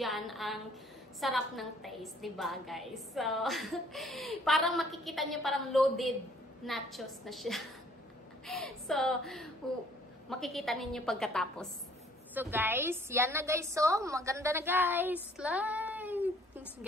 ang sarap ng taste, diba, guys? So, parang makikita nyo parang loaded nachos na siya. So, makikita ninyo pagkatapos. So guys, yan na guys. So, maganda na guys. Like,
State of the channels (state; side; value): normal; both; correlation 0.60